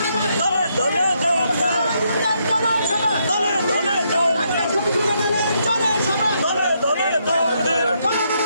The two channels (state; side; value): inverted; both; correlation -0.76